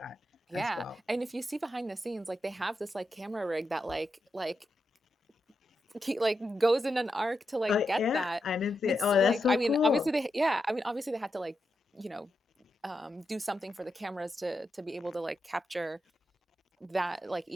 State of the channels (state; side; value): normal; both; correlation 0.86